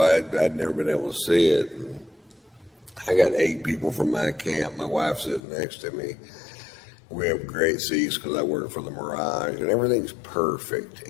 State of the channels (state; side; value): drops out; right; at 5.4 s